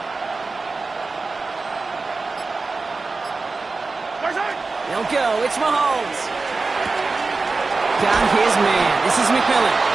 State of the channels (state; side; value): quieter; left; 3.9 dB